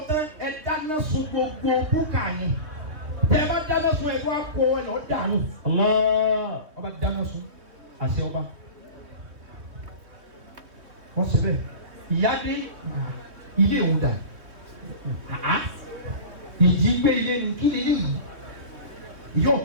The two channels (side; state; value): left; late; 3.2 ms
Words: tán ẹ dáná sun gbogbo búkà yìí tẹ́ ẹ bá dáná sun ẹ tó wá kó ẹ lọ dànù. ọba dáná sun àṣẹ ọba wọ́n ṣe bẹ́ẹ̀ ìyá dé ilé òun dà ìjì gbé ilé ní kí ni yìí yóò